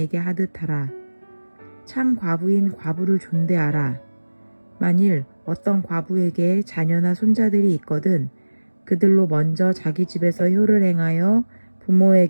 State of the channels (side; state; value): both; inverted; correlation -1.00